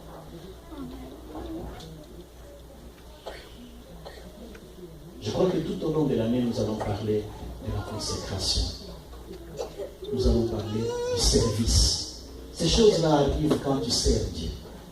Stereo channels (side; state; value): both; identical; correlation 1.00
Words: Je crois que tout au long de l'année, nous allons parler de la consécration. Nous allons parler du service. Ces choses-là arrivent quand tu sers Dieu.